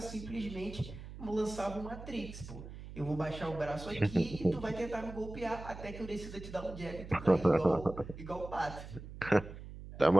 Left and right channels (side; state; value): right; noise; hum, 13 dB below the sound